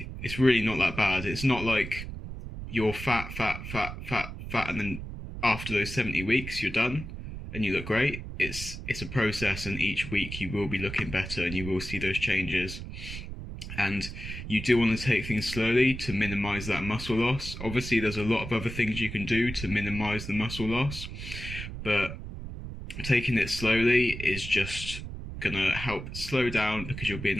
not that bad. It's not like you're fat, and then after those 70 weeks, you're done and you look great. It's a process, and each week you will be looking better and you will see those changes. And you do want to take things slowly to minimize that muscle loss. Obviously, there's a lot of other things you can do to minimize the muscle loss, but taking it slowly is just going to help slow down, because you'll be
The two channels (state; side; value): noise; right; rumble, 9 dB below the sound